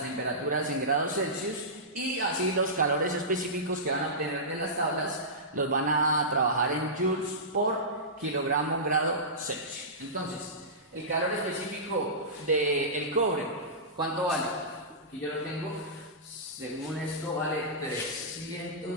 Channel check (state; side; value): normal; both; correlation -0.18